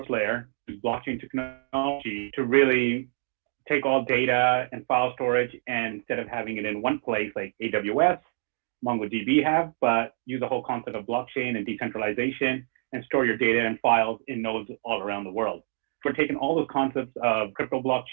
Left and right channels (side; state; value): left; silent; digital silence